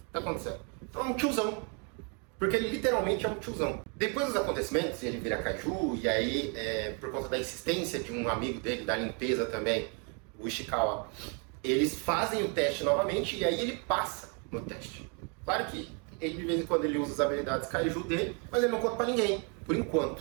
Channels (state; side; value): quieter; left; 36.7 dB